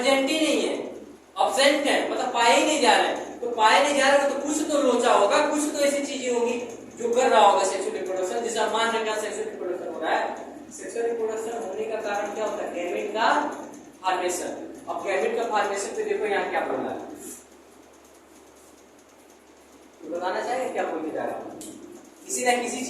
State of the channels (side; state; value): both; identical; correlation 1.00